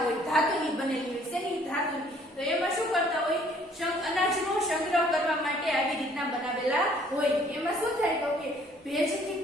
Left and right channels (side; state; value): both; normal; correlation 0.60